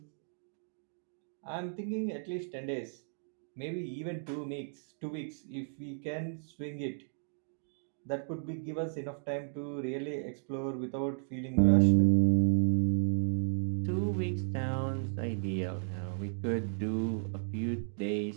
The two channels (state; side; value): silent; left; digital silence